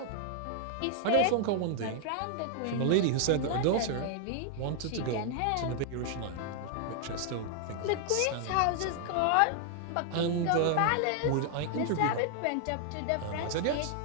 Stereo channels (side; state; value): both; different; correlation 0.00